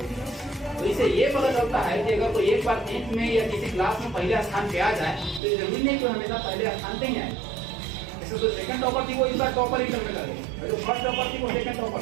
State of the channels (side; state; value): left; drops out; at 5.4 s